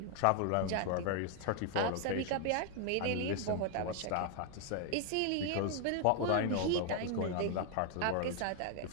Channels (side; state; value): both; different; correlation 0.00